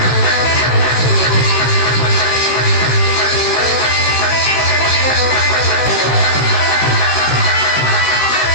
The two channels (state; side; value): late; right; 16 ms